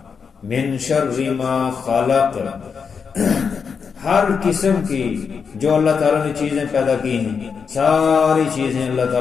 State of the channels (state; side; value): quieter; right; 6.0 dB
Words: من شر ما خلق، ہر قسم کی جو اللہ تعالیٰ نے چیزیں پیدا کی ہیں، ساری چیزیں اللہ